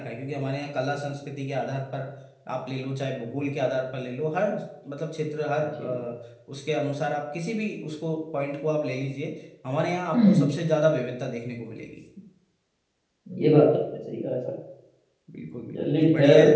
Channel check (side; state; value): both; identical; correlation 1.00